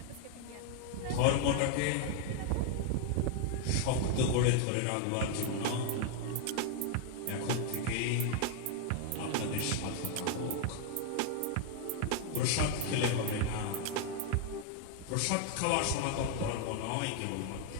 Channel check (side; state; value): both; different; correlation 0.00